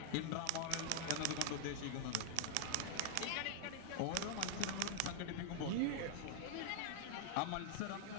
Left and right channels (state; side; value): different; both; correlation 0.00